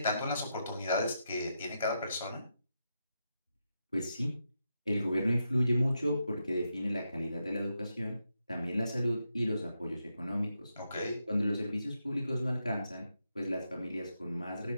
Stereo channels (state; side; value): inverted; both; correlation -0.84